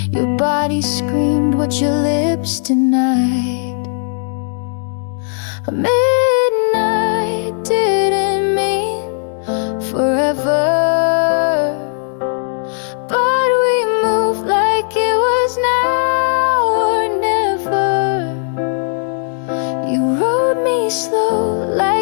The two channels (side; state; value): right; silent; digital silence